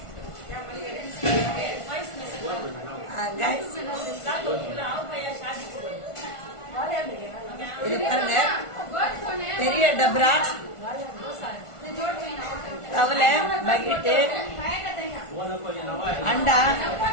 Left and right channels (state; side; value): late; right; 1.4 ms